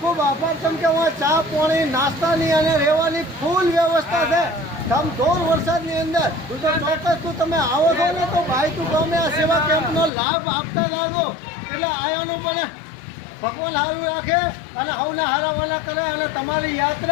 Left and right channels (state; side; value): drops out; right; at 10.1 s